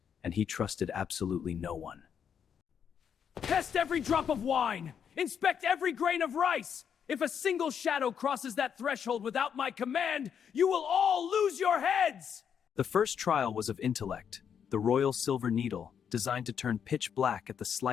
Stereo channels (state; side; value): quieter; right; 7.8 dB